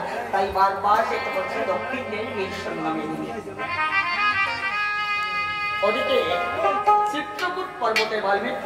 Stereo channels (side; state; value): both; identical; correlation 1.00